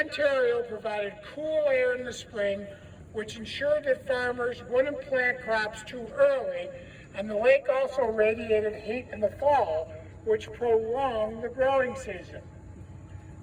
provided cool air in the spring, which ensured that farmers wouldn't plant crops too early, and the lake also radiated heat in the fall, which prolonged the growing season.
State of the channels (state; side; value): identical; both; correlation 1.00